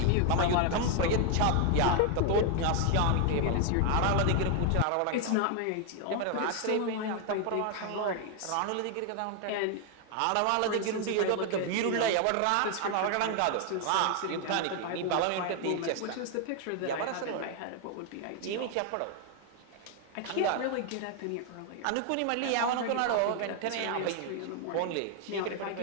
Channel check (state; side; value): different; both; correlation 0.00